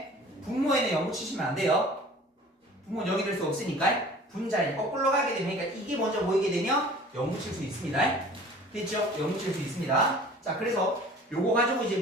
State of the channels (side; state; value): both; normal; correlation 0.46